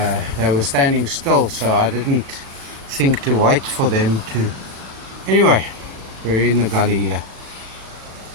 They were standing still, so I didn't think to wait for them to. Anyway, we're in the gully here.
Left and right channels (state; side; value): late; left; 36 ms